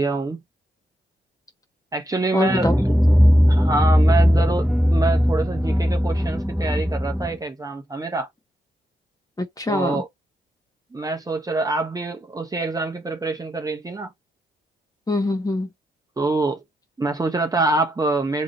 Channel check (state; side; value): normal; both; correlation 0.85